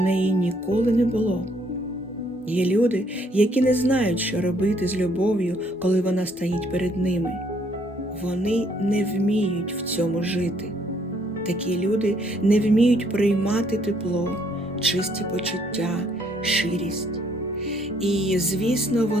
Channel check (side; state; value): both; normal; correlation 0.67